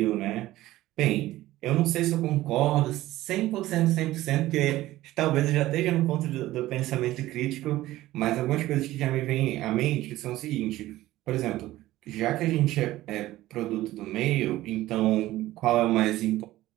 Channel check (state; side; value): quieter; left; 16.1 dB